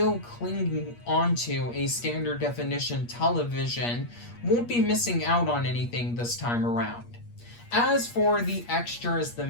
clinging onto a standard definition television won't be missing out on anything this time around. As for the extras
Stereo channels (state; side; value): late; right; 8.5 ms